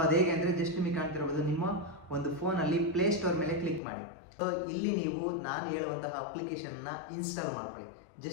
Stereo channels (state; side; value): drops out; right; at 3.8 s